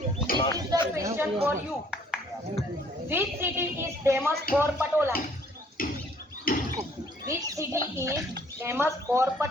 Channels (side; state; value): both; normal; correlation 0.61